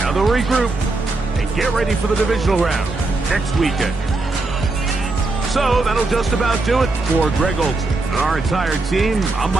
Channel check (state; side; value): quieter; left; 3.3 dB